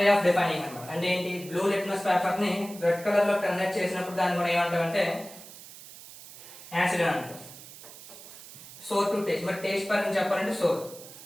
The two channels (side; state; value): right; noise; hiss, 16 dB below the sound